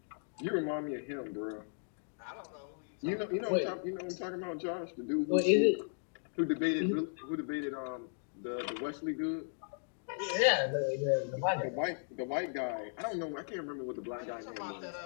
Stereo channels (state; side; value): silent; right; digital silence